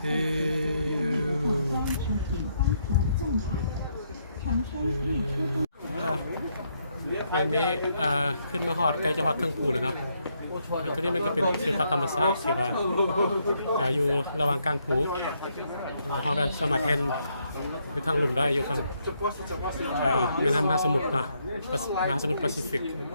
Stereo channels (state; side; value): inverted; both; correlation -0.75